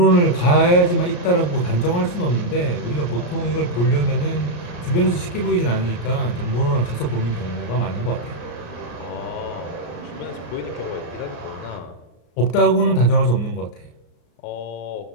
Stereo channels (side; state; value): right; late; 34 ms